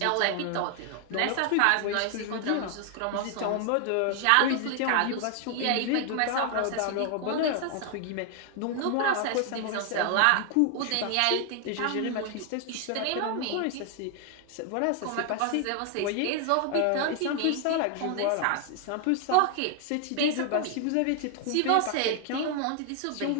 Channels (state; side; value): different; both; correlation 0.00